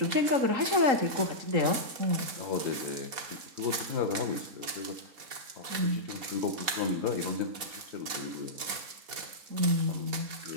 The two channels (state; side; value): late; left; 4.2 ms